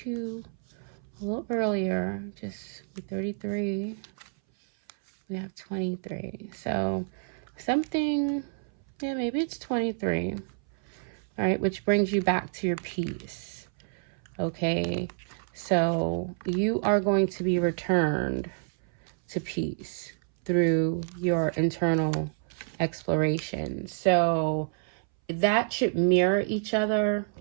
a little earlier, just 33. We have 23, so something, yeah, maybe it's 23. All right, which brings you back to your peace. Okay, so you are going to be returned to peace through your internal exploration. So that should mirror each other,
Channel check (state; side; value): silent; left; 59 dB below the other